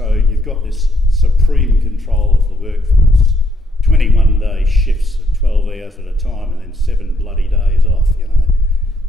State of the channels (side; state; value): both; normal; correlation 0.73